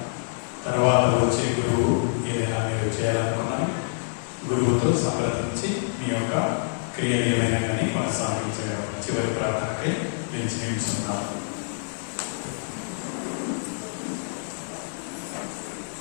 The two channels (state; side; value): silent; right; 61 dB below the other